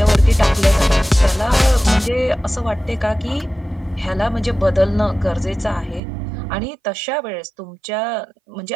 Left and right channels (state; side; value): drops out; left; at 6.0 s